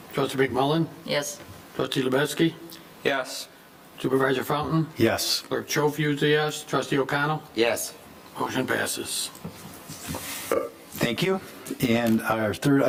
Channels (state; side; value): identical; both; correlation 1.00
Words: Trustee McMullen? Yes. Trustee Lubetsky? Yes. Supervisor Fountain? Yes. Clerk Schofield is a yes. Trustee O'Connell? Yes. Motion passes. Thank you. And our third